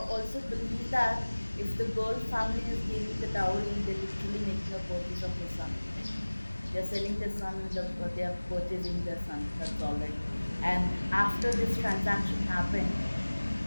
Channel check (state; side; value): inverted; both; correlation -1.00